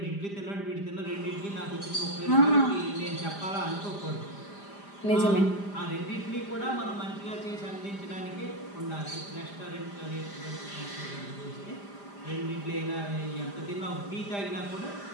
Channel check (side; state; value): right; late; 5.0 ms